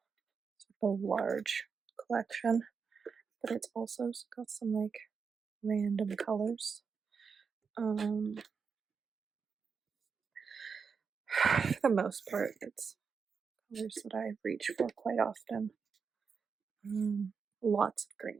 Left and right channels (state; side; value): quieter; left; 5.7 dB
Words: sort of a large collection, but it's also got some like random colors. For the most part, it's colors that I reach for quite often. Lots of